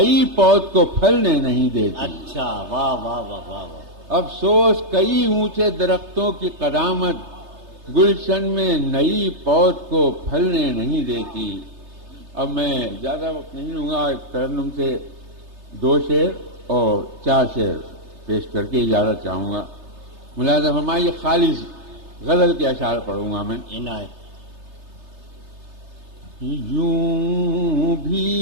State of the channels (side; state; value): left; late; 3.3 ms